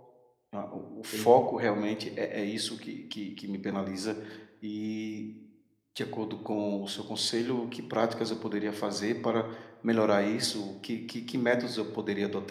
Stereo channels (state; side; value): identical; both; correlation 1.00